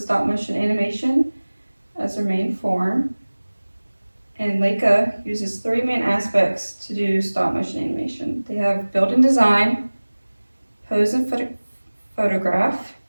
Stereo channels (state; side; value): inverted; both; correlation -1.00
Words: motion animation as their main form, and Leica uses three main aspects to do stop motion animation. They have built-in design, pose and photograph,